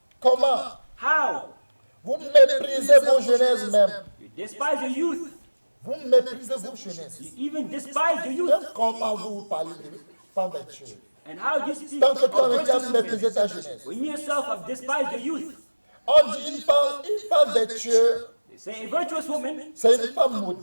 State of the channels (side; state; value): both; inverted; correlation -1.00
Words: Comment? How? Vous méprisez vos jeunesses même. You despise your youth. Vous méprisez vos jeunesses. You even despise your youth. Donc, comment vous parlez de femme vertueuse? And how do you speak Tant que of toi-même tu as virtuous méprisé women ta jeunesse. when you yourself have despised your youth? On dit une femme vertueuse, They say a virtuous woman c'est une femme